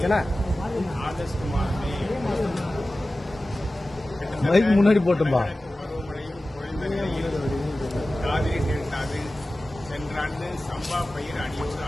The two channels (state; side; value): normal; both; correlation 0.96